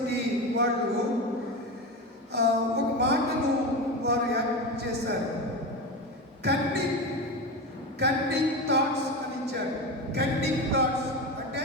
వాళ్ళు ఒక మాటను వారు యాడ్ చేశారు. కన్నింగ్ థాట్స్ అని ఇచ్చారు. కన్నింగ్ థాట్స్ అంటే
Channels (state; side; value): normal; both; correlation 0.21